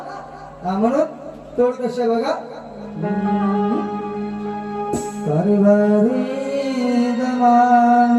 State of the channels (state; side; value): identical; both; correlation 1.00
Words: हा म्हणून तोड कसे बघा.